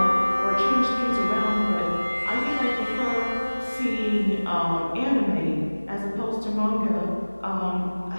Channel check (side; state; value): both; inverted; correlation -1.00